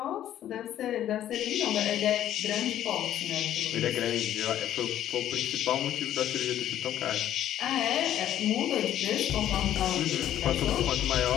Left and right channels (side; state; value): right; quieter; 11.7 dB